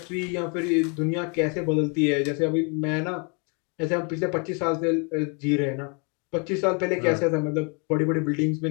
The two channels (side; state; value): right; quieter; 35.4 dB